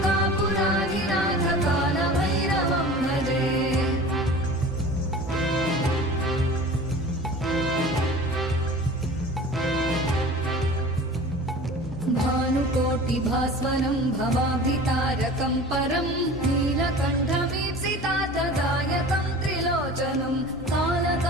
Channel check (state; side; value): normal; both; correlation 0.40